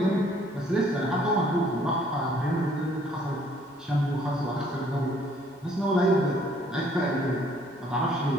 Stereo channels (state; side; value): normal; both; correlation 0.62